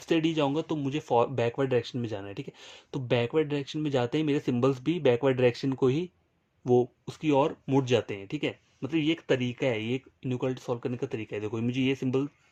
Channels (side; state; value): both; identical; correlation 1.00